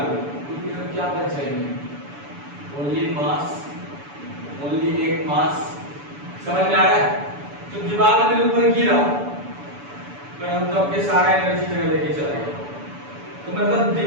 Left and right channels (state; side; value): late; left; 7.0 ms